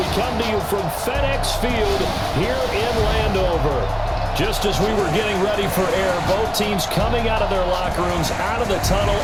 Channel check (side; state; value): both; identical; correlation 1.00